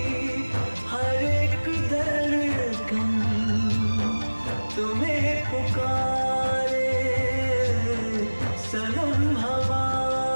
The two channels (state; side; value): inverted; both; correlation -1.00